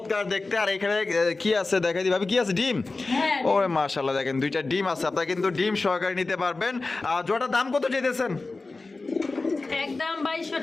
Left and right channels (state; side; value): quieter; right; 3.5 dB